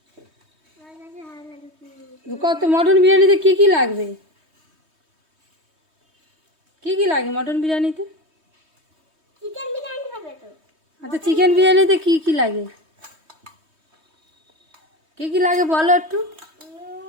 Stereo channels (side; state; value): left; late; 3.2 ms